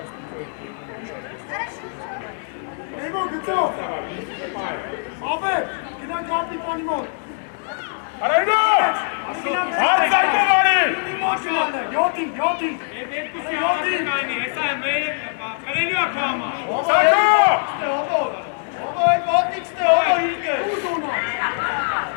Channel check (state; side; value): silent; right; digital silence